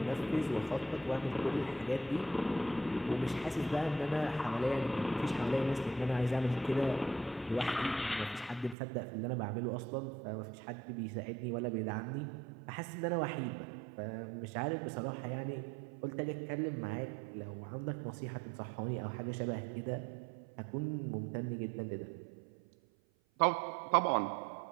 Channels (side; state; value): left; drops out; at 8.8 s